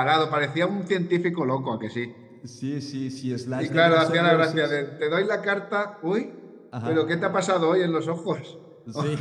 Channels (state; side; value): identical; both; correlation 1.00